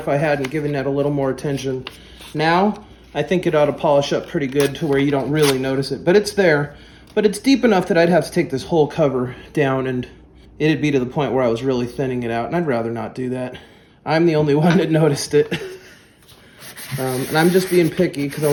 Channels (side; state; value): both; identical; correlation 1.00